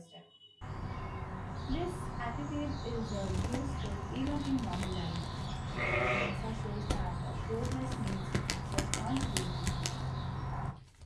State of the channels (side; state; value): both; identical; correlation 1.00